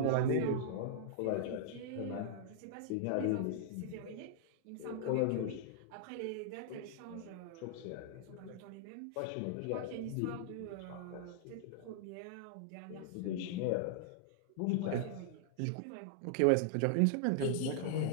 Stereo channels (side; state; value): both; different; correlation -0.01